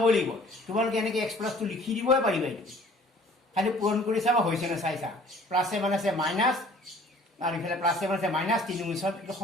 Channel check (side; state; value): both; normal; correlation 0.52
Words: লাগিব। তোমালোকে এনেকৈ x+2 লিখি দিবই পাৰিবা। এইটো খালি পূৰণ কৰি চাবা হৈছে নে চাইছা। প্লাছে মানে আছে মাইনাছ আৰু ইফালে প্লাছে মানে আছে মাইনাছ 3 × 7 এইটো